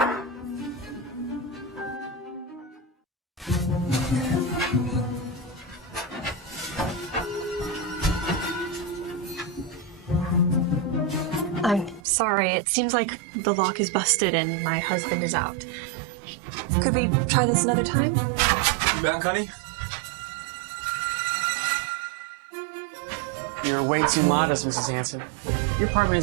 I'm sorry, it seems like the lock is busted and my husband is out. Could we try this another time? You back, honey? You're way too modest, Mrs. Hansen. Your apartment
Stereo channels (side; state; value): left; drops out; at 12.0 s